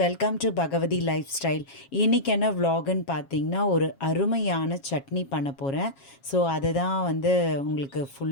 welcome to Bhagavathi lifestyle. இன்றைக்கி என்ன vlogன்னு பார்த்தீங்கன்னா, ஒரு அருமையான சட்னி பண்ண போகிறேன். ஸோ அதை தான் உங்களுக்கு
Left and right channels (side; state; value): right; late; 7.3 ms